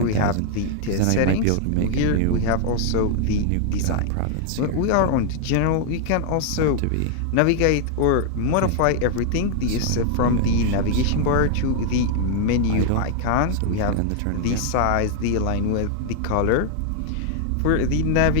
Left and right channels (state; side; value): different; both; correlation 0.00